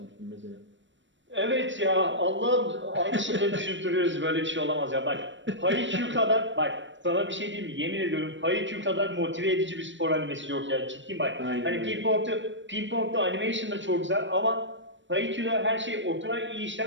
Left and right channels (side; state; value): left; late; 0.54 ms